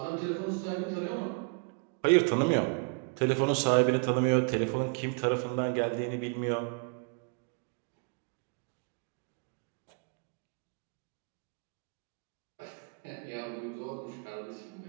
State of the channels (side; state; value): left; quieter; 37.5 dB